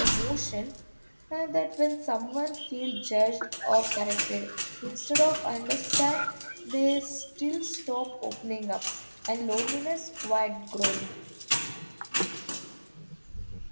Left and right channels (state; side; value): inverted; both; correlation -1.00